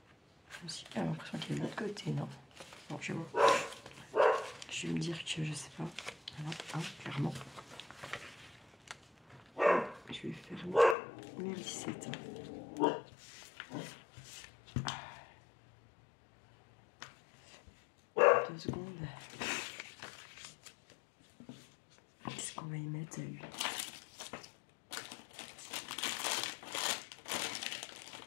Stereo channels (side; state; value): right; drops out; at 11.0 s